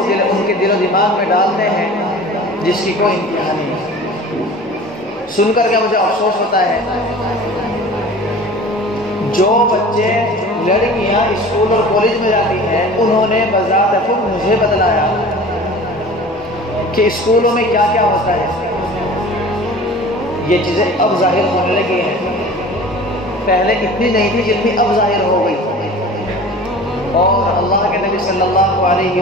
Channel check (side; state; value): both; normal; correlation 0.41